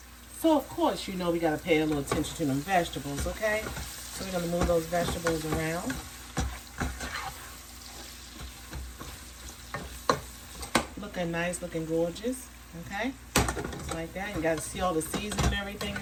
So of course, you know we gotta pay a little attention to them vegetables, okay? So we're gonna move those vegetables around. Looking nice, looking gorgeous, okay? Just like that. You gotta see all the seasoning and everything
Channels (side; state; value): both; identical; correlation 1.00